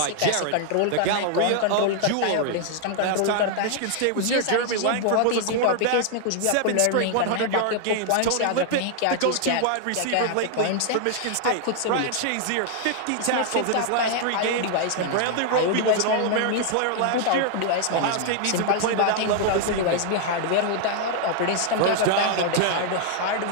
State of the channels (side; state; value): both; different; correlation 0.00